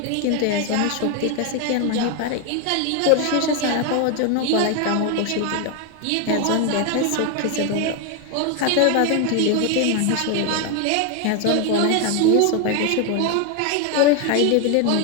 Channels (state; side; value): different; both; correlation 0.01